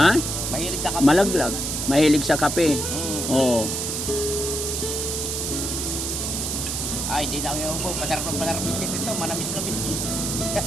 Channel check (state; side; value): noise; right; hiss, 2 dB below the sound